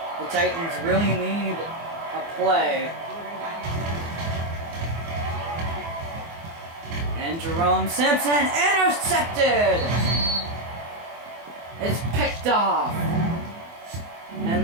Titans really need a play. And Jerome Simpson intercepted! It's picked off.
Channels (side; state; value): left; late; 24 ms